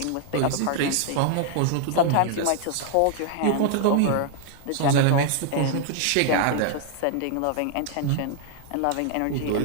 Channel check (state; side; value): different; both; correlation 0.00